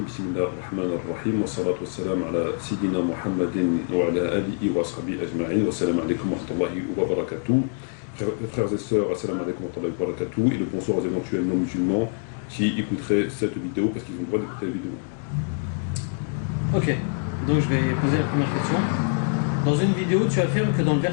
بسم الله الرحمن الرحيم والصلاة والسلام على سيدنا محمد وعلى آله وصحبه أجمعين والسلام عليكم ورحمة الله وبركاته. Frères et sœurs, assalamu alaikum wa rahmatullahi wa barakatuh, et le bonsoir aux éventuels non-musulmans qui écouteraient cette vidéo parce qu'ils ont le droit d'écouter la vidéo. Ok, donc je vais poser la première question. Dans une vidéo, tu affirmes que dans le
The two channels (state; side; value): silent; right; 62 dB below the other